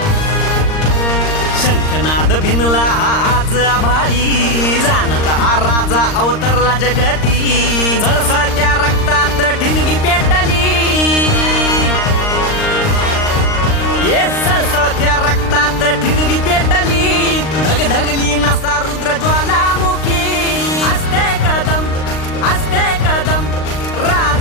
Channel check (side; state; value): right; late; 39 ms